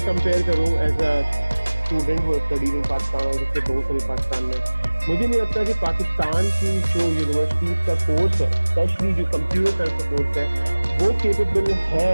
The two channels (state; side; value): inverted; both; correlation -1.00